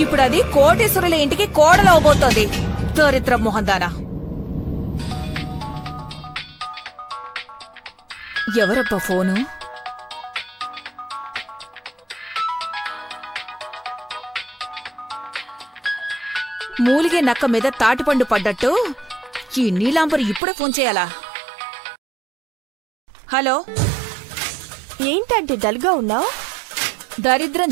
ఇప్పుడు అది కోటేశ్వరుల ఇంటికి కోడలవబోతోంది. దరిద్ర మొహందానా. ఎవరబ్బా ఫోను? మూలిగే నక్క మీద తాటిపండు పడ్డట్టు ఈ నీలాంబరి ఇప్పుడే ఫోన్ చేయాలా? హలో, ఏంటంటే డల్గా ఉన్నావు? దరిద్రం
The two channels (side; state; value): left; drops out; at 20.4 s